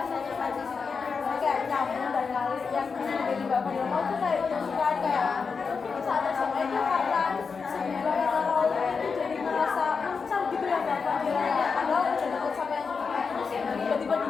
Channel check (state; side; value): quieter; right; 5.3 dB